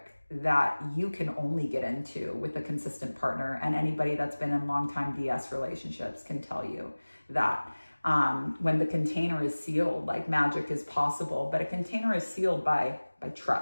that you can only get into with a consistent partner. And anybody that's been in long-time DS relationships can tell you that when the container is sealed, like magic is possible, but a container is sealed by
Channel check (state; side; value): inverted; both; correlation -1.00